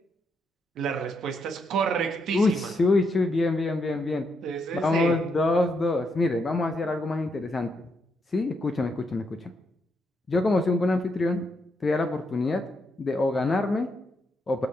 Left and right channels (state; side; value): normal; both; correlation 0.79